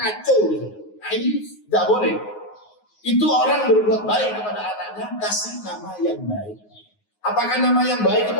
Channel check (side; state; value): right; late; 9.5 ms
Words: gitu. Nah ini nggak boleh. Itu orang berbuat baik kepada anaknya, kasih nama yang baik. Apakah nama yang baik itu